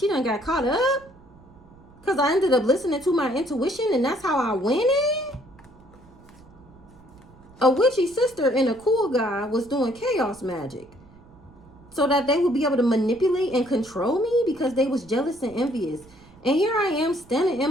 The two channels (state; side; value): noise; right; rumble, 25 dB below the sound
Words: done got caught up because I ended up listening to my intuition, and that's how I went in. A witchy sister and a cool guy was doing chaos magic so that they would be able to manipulate and control me because they was jealous and envious. And here I am standing